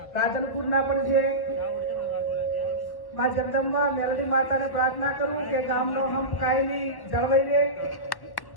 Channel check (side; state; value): right; late; 1.1 ms